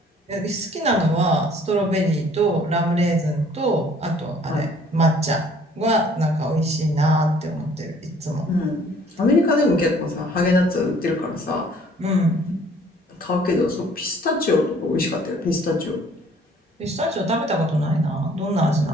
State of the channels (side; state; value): both; normal; correlation 0.57